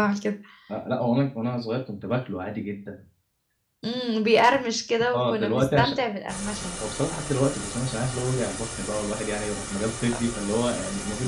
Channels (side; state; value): both; identical; correlation 1.00